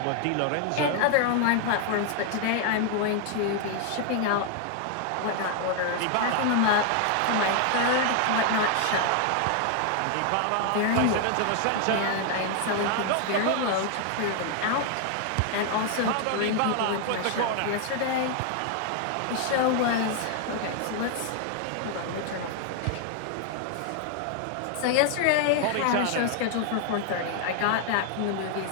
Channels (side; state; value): both; different; correlation 0.00